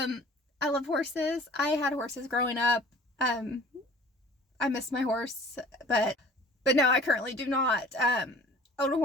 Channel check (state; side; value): normal; both; correlation 0.47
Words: love horses. I had horses growing up. I miss my horse, but no, I currently do not own a